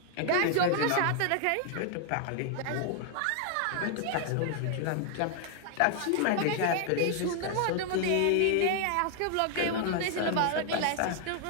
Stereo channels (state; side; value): different; both; correlation 0.00